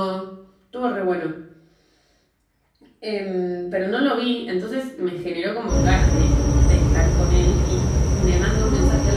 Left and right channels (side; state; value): both; identical; correlation 1.00